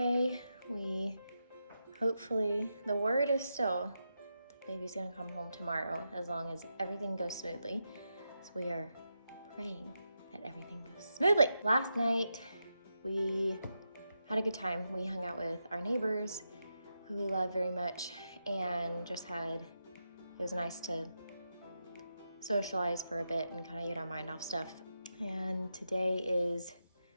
Hopefully, the word is still the baby's gonna come home tomorrow as long as everything goes smoothly. So we are praying that everything goes smoothly. Last night, we had a good time. We hung out with our neighbors who we love very much and it was nice to socialize for a bit and kind of get our mind off stuff. And today is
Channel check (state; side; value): inverted; both; correlation -0.86